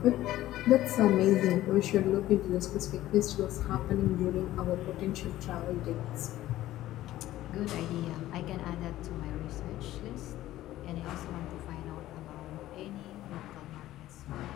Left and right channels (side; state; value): right; quieter; 14.8 dB